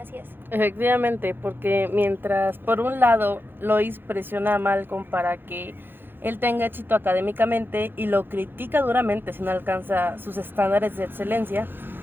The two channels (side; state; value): left; late; 0.10 ms